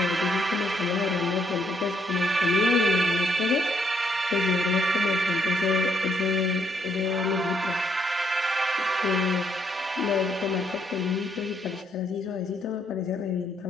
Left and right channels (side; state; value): both; normal; correlation 0.73